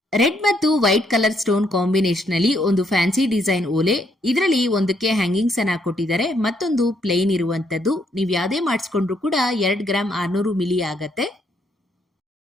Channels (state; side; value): normal; both; correlation 0.72